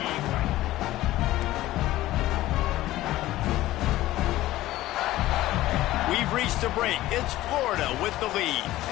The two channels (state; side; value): quieter; right; 15.9 dB